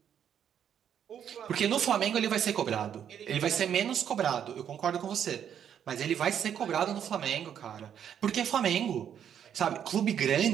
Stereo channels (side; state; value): left; quieter; 8.9 dB